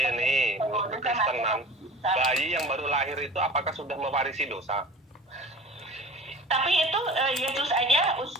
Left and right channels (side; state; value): both; normal; correlation 0.41